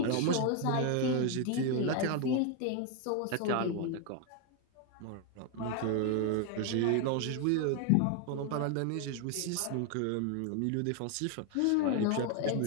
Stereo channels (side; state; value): both; different; correlation 0.01